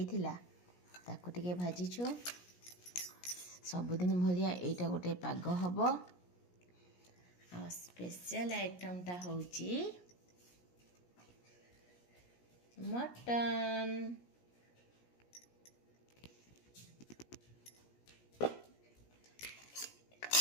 ताको टिके भाजीछु सबुदिन भलिया एटा गोटे पाग हम आ स्पेशल आइटमटा होची मटन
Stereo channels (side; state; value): right; late; 17 ms